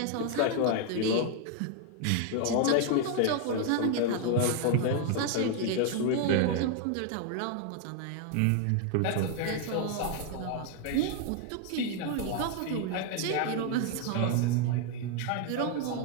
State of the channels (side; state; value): both; different; correlation 0.00